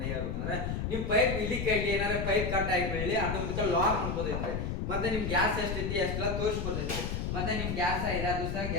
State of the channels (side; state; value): left; noise; rumble, 2 dB below the sound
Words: ಹೇಳ್ಬೇಕಂದ್ರೆ, ನಿಮ್ ಪೈಪ್ ಇಲ್ಲಿ ಕೈಲಿ ಏನಾರ ಪೈಪ್ ಕಟ್ ಆಗಿ ಬೆಳಿ ಅದಕ್ಕೆ ಲಾಕ್ ಮಾಡ್ಕೋದೈತ್ರಿ. ಮತ್ತೆ ನಿಮ್ ಗ್ಯಾಸ್ ಎಷ್ಟೈತಿ ಅಷ್ಟೆಲ್ಲ ತೋರಿಸ್ಕೊತೈತಿ. ಮತ್ತೆ ನಿಮ್ ಗ್ಯಾಸ್ 5 ದಿವಸ